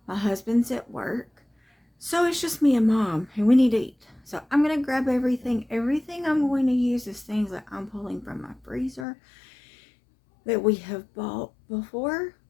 My husband's at work, so it's just me and mom, and we need to eat. So I'm gonna grab everything. Everything I'm going to use is things that I'm pulling from my freezer that we have bought before,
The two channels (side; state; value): right; drops out; at 9.1 s